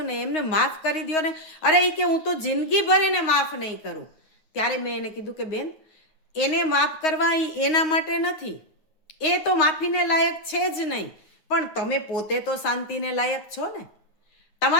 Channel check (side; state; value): right; late; 9.6 ms